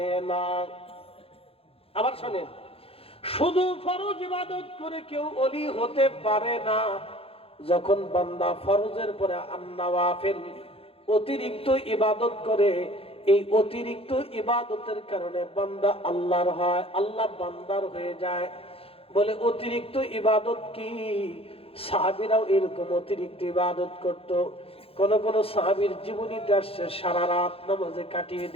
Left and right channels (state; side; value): late; right; 0.27 ms